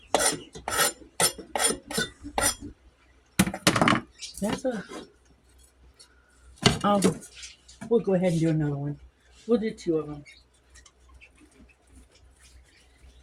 We'll go ahead and do another one. We'll do two of them.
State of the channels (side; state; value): both; identical; correlation 1.00